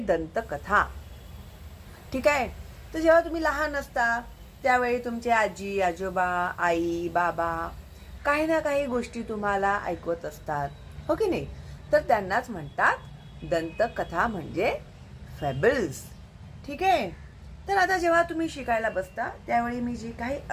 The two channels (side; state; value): both; identical; correlation 1.00